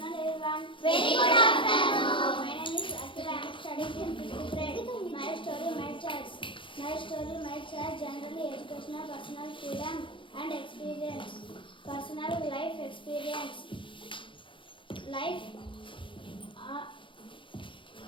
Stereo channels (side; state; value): right; late; 0.25 ms